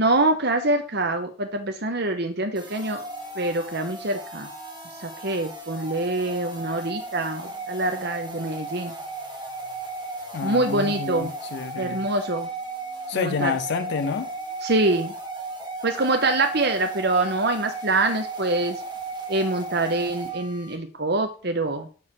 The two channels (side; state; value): both; normal; correlation -0.01